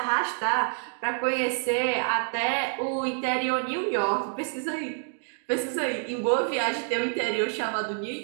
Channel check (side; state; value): left; silent; 60 dB below the other